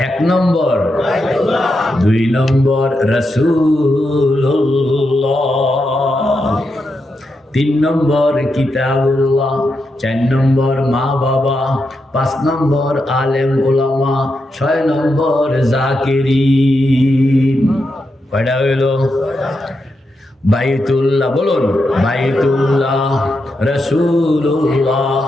এক নম্বর, দুই নম্বর রাসূলুল্লাহ, তিন নম্বর কিতাবুল্লাহ, চার নম্বর মা বাবা, পাঁচ নম্বর আলেম ওলামা, ছয় নম্বর জাকিরিন। কয়টা হইল? বাইতুল্লাহ, বলুন বাইতুল্লাহ, রাসূলুল্লাহ,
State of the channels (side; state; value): both; normal; correlation 0.85